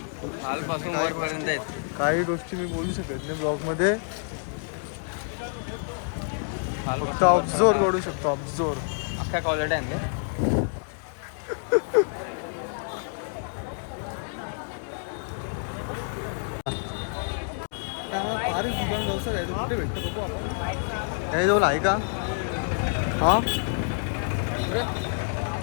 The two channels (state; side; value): silent; right; 60 dB below the other